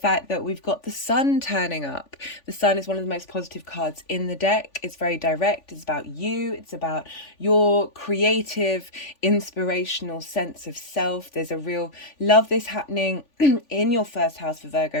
that we've got the sun turning up. The sun is one of the most positive cards in the deck. It's very direct. It's about you. It's about your creative, inspirational sense of self. There's a real love this happening in your first house for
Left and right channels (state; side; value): late; right; 3.5 ms